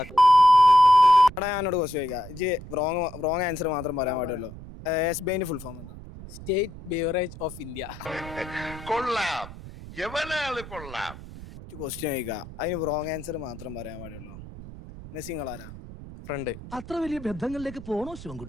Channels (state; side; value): noise; right; rumble, 14 dB below the sound